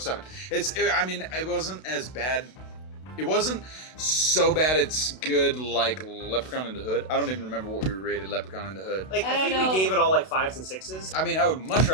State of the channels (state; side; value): late; right; 32 ms